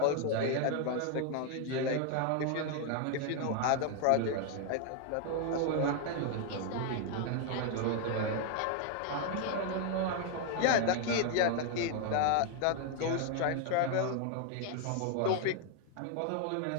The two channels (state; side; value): different; both; correlation 0.00